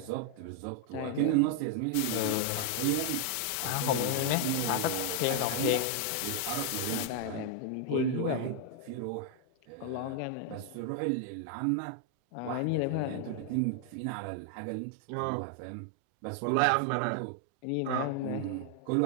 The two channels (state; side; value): different; both; correlation 0.00